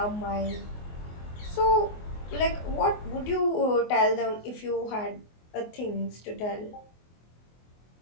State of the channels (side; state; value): right; late; 24 ms